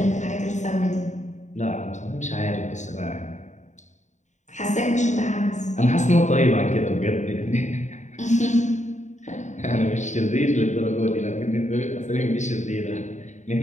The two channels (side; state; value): right; late; 0.34 ms